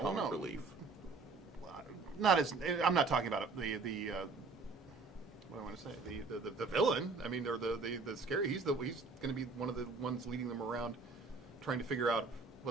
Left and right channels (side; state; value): left; quieter; 4.1 dB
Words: comic no. relief. Not as I'm not talking about the what I want to say the villain. I mean, or the scary. He's going to be one of the ones leading them around, trying to figure out